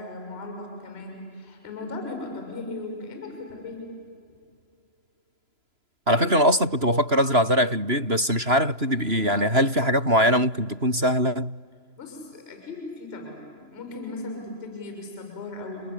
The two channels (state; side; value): late; left; 3.0 ms